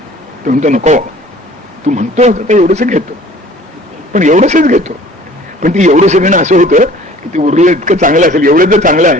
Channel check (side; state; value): both; normal; correlation 0.50